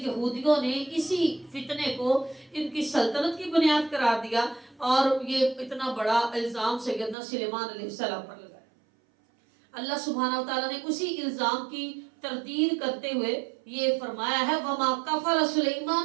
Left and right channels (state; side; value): drops out; left; at 7.2 s